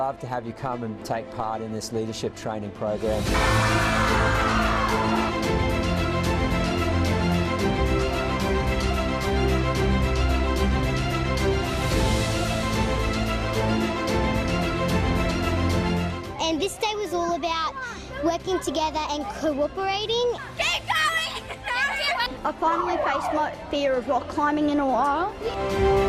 to have you come and take part in this leadership training program. And this day was all about working together and cooperating. Keep going! I finally faced my fear of rock climbing in a while.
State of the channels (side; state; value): both; identical; correlation 1.00